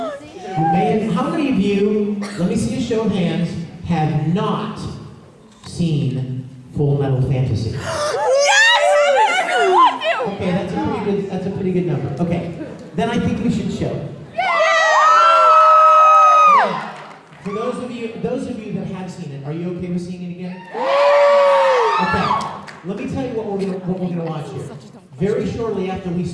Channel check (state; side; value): identical; both; correlation 1.00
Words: many of you, let me see a show of hands, have not seen Full Metal Fantasy? Yes! Okay, that's a pretty good number. Okay, then I think we should show it. Are you okay with seeing it again? Okay. Let me tell you what we're going to watch here. Very shortly after we